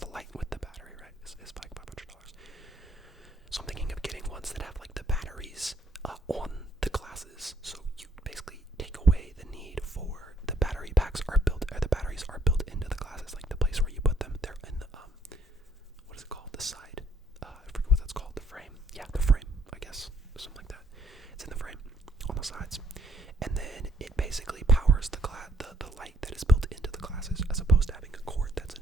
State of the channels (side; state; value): both; normal; correlation 0.67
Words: light with the battery, right, is like $500. So I'm thinking of getting ones that have like the batteries on the glasses, so you basically take away the need for the battery packs are built, or the batteries are built into the glasses, like the place where you put them. They're in the what is it called? The side. I forget what that's called. The frame. Yeah, the frame. I guess something like that. It's in the frame on the sides, and then it basically powers the light that is built into the glasses, as opposed to having a cord that's